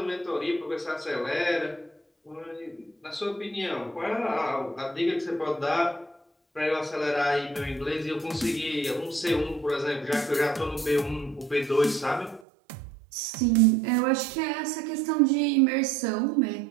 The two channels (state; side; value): drops out; left; at 12.4 s